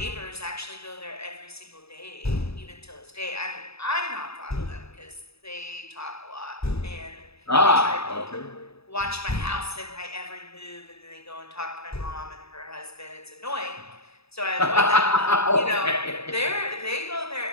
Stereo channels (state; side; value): late; right; 0.78 ms